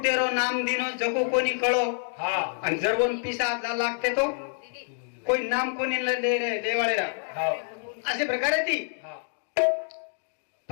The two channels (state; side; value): silent; right; digital silence